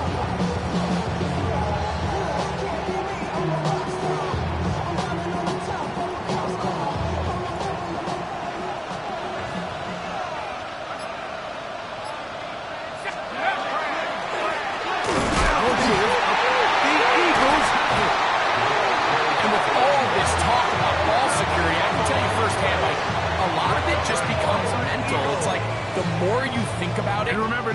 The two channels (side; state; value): both; identical; correlation 1.00